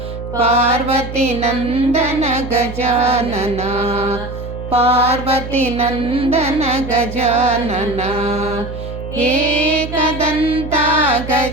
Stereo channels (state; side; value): noise; right; hum, 9 dB below the sound